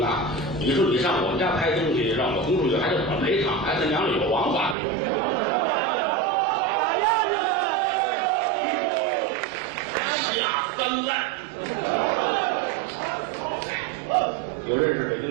你说你上我们家拍东西，让我轰出去，还得怎么赔偿？还他娘的有王法没有？下三滥。有认识北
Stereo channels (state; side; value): drops out; left; at 4.8 s